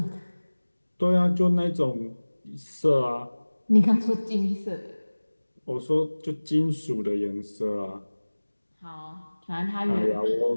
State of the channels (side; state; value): both; inverted; correlation -1.00